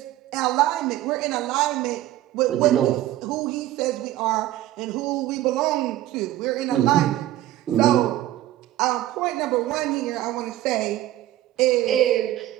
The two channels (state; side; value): quieter; left; 14.4 dB